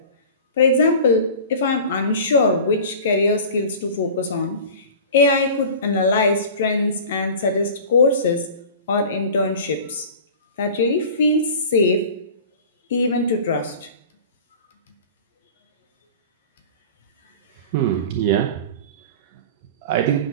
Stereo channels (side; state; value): both; inverted; correlation -0.38